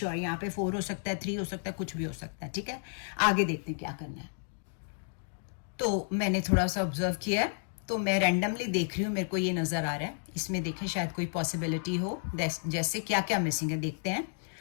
यहाँ पे 4 हो सकता है, 3 हो सकता है, कुछ भी हो सकता है। ठीक है, आगे देखते हैं क्या करना है। तो मैंने थोड़ा सा ऑब्जर्व किया है, तो मैं रैंडमली देख रही हूँ, मेरे को ये नजर आ रहा है, इसमें देखें शायद कोई पॉसिबिलिटी हो, जैसे क्या क्या मिसिंग है देखते हैं।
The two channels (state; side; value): silent; right; digital silence